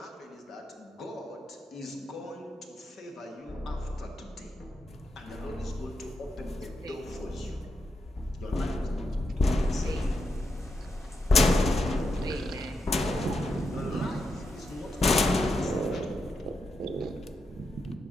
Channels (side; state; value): both; normal; correlation 0.84